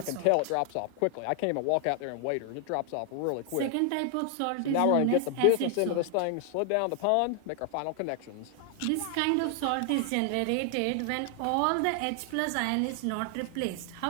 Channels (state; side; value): different; both; correlation 0.00